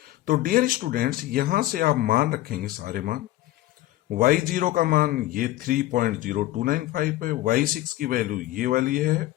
तो डियर स्टूडेंट्स यहां से आप मान रखेंगे सारे मान। y0 का मान ये 3.0295 है, y6 की वैल्यू ये वाली है,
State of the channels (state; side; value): quieter; right; 16.0 dB